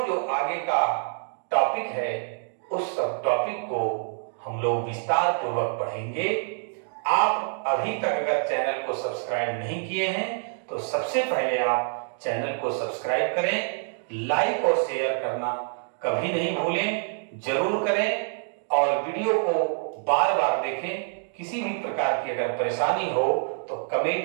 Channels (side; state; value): left; silent; 61 dB below the other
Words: जो आगे का टॉपिक है उस सब टॉपिक को हम लोग विस्तार पूर्वक पढ़ेंगे। आप अभी तक अगर चैनल को सब्सक्राइब नहीं किए हैं तो सबसे पहले आप चैनल को सब्सक्राइब करें, लाइक और शेयर करना कभी नहीं भूलें, जरूर करें, और वीडियो को बार बार देखें। किसी भी प्रकार की अगर परेशानी हो तो